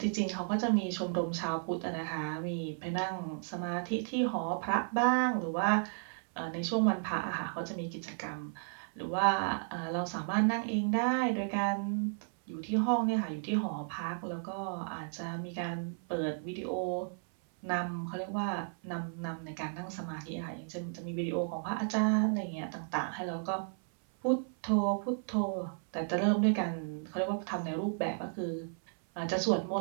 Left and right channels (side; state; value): left; silent; 55 dB below the other